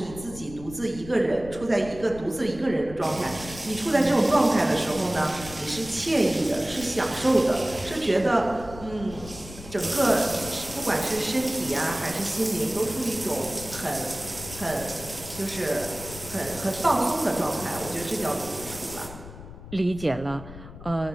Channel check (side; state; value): left; noise; rumble, 14 dB below the sound